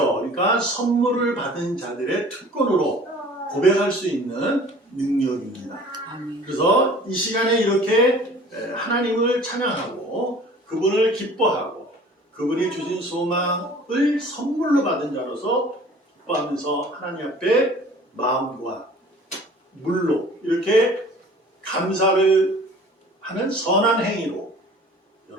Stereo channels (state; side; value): normal; both; correlation 0.47